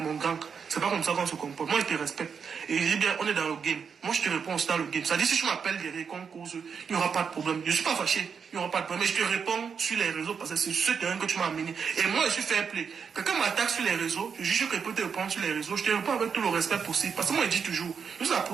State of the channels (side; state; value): left; quieter; 6.4 dB